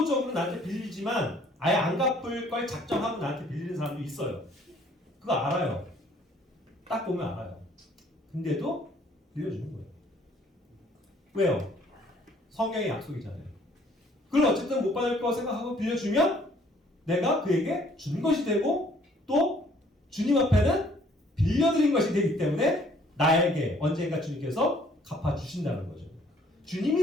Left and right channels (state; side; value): normal; both; correlation 0.60